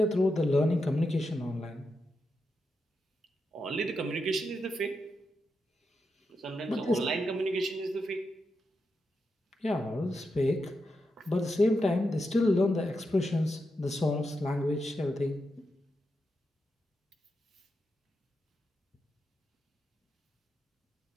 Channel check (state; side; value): normal; both; correlation 0.86